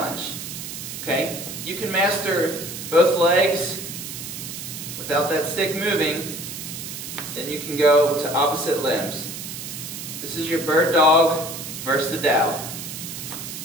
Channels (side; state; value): right; noise; hiss, 8 dB below the sound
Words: Okay? You can master both legs without that stick moving, then you can go to opposite limbs. This is your bird dog versus the dow.